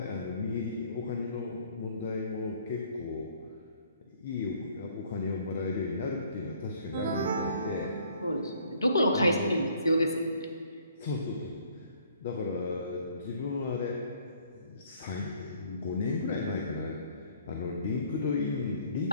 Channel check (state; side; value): inverted; both; correlation -0.60